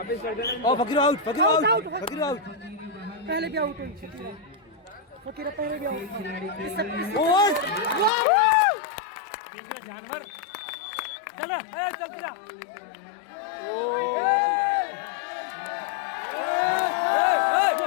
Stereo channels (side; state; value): right; drops out; at 8.1 s